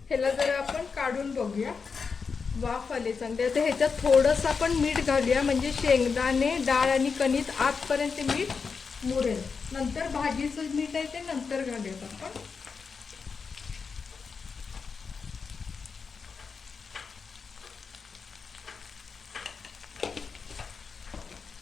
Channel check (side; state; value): right; quieter; 5.3 dB